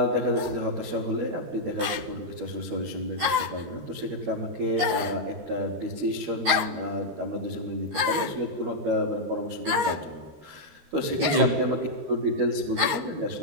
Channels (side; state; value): left; late; 13 ms